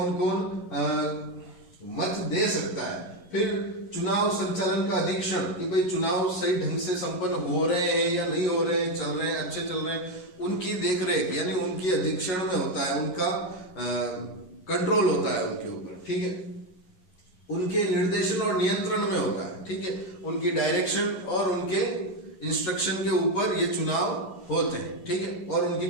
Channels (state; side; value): late; right; 11 ms